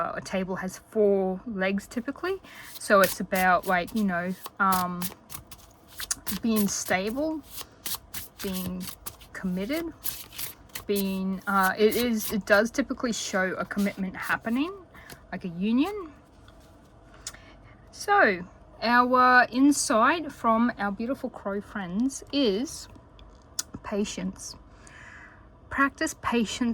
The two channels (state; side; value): identical; both; correlation 1.00